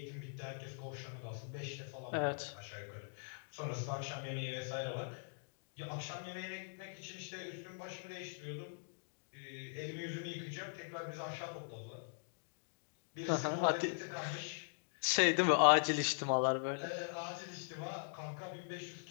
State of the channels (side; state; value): right; silent; digital silence